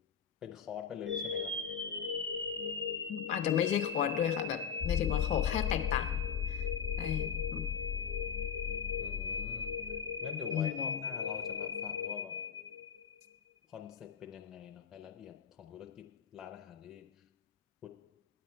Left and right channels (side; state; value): right; quieter; 7.4 dB